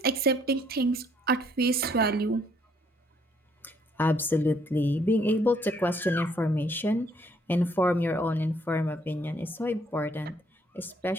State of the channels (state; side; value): normal; both; correlation 0.67